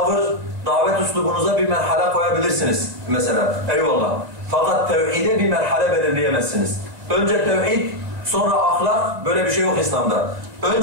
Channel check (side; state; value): left; late; 2.0 ms